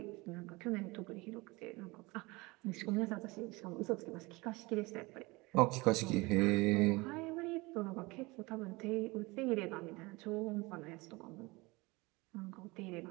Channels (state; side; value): quieter; left; 23.8 dB